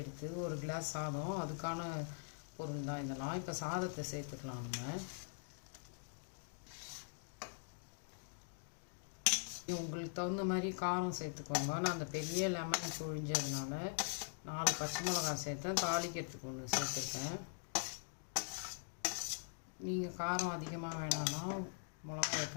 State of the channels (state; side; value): silent; right; digital silence